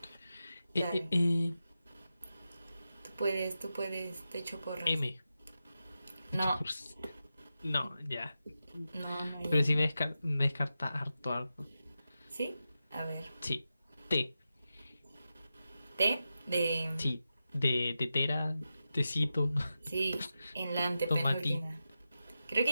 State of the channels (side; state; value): both; inverted; correlation -0.91